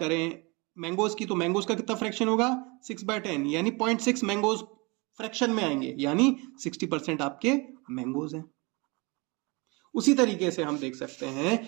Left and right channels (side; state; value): left; quieter; 27.6 dB